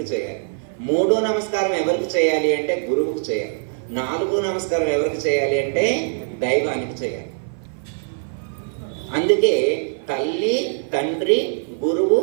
చేయాలి. మూడో నమస్కారం ఎవరికి చేయాలి అంటే గురువుకు చేయాలి. నాలుగో నమస్కారం ఎవరికి చేయాలి అంటే దైవానికి చేయాలి. అందుకే తల్లి, తండ్రి, గురువు,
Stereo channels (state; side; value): silent; left; 56 dB below the other